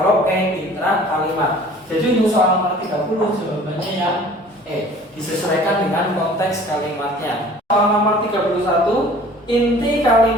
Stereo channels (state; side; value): normal; both; correlation 0.49